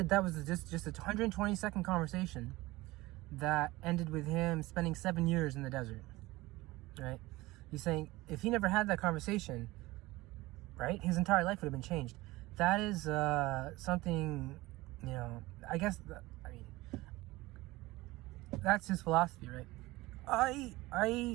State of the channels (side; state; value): left; quieter; 19.8 dB